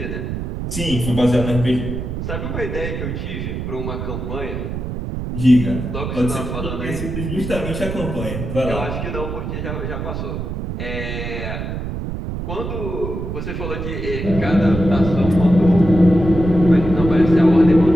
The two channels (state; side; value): noise; right; rumble, 5 dB below the sound